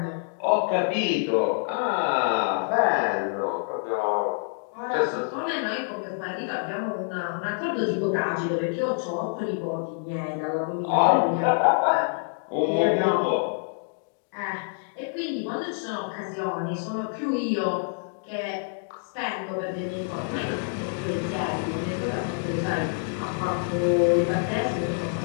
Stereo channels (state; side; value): silent; right; digital silence